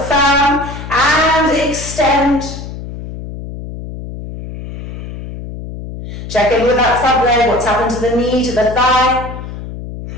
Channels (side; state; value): left; noise; hum, 10 dB below the sound